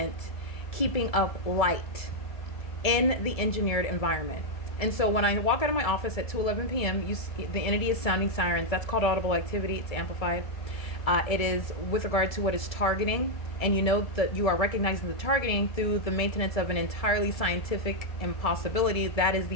keeping up light in the engineered environment. And so when I walk out of my office at 2:11 p.m., the entity is sounding sirens. That's called audible activity. It's amplified. It is with regard to what is targeting, and you know that you are recognizing the targeting through the maintenance of an entirely scientific impossibility. That is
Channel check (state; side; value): late; right; 1.7 ms